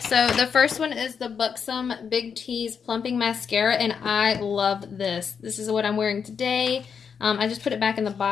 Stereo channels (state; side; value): quieter; right; 6.6 dB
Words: the first one is the Buxom Big T's Plumping Mascara, and I love this. This is what I'm wearing today. I just put it back in the